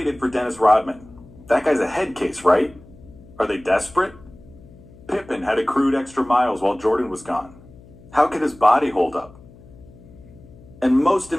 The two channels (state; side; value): noise; left; hum, 22 dB below the sound